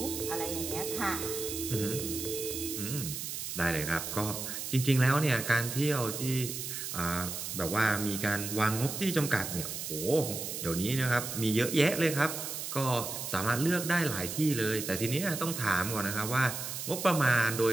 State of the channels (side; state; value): right; noise; hiss, 5 dB below the sound